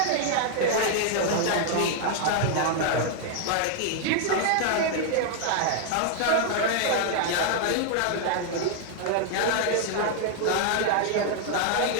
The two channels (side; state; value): both; different; correlation 0.00